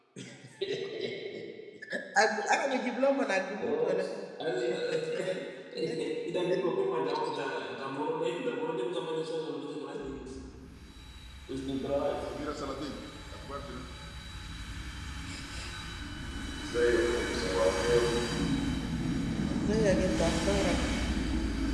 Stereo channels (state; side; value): identical; both; correlation 1.00